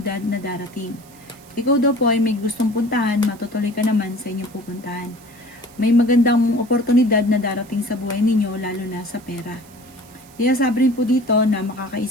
na darating. Ikaw daw po ay may gustong puntahan, matutuloy ka naman sa inyong pupuntahan. May magandang oportunidad na darating sa buhay ninyo, lalo na sa pera. Kaya sabi rin po dito na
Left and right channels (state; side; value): noise; right; hiss, 25 dB below the sound